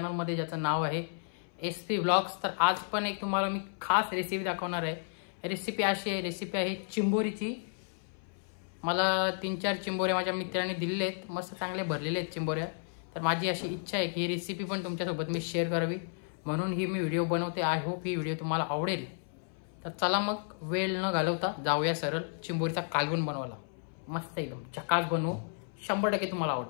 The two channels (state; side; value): silent; right; 56 dB below the other